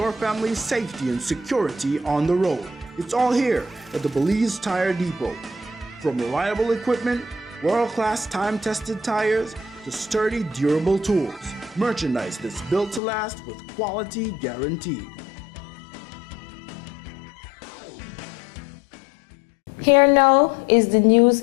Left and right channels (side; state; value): right; drops out; at 13.0 s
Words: family's safety and security on the road. It's all here at the Belize Tire Depot. From reliable equipment, world-class time-tested tires, to sturdy, durable tools. Merchandise that's built to last with quality guaranteed. Here now is the news